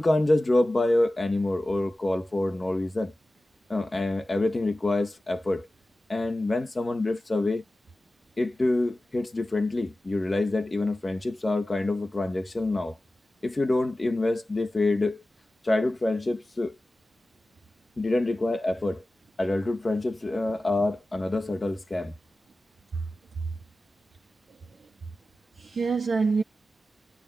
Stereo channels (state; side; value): normal; both; correlation 0.95